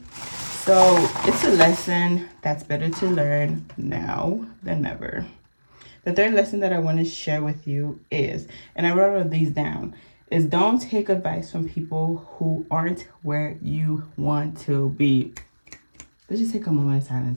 So it's a lesson that's better to learn now than never. The third lesson that I want to share with you is, and I wrote all these down, is don't take advice from people who aren't where you want to be. Let's just take a moment of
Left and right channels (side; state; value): both; inverted; correlation -1.00